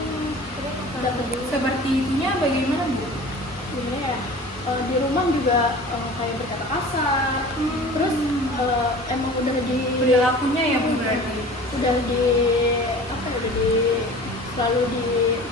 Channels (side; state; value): both; normal; correlation 0.41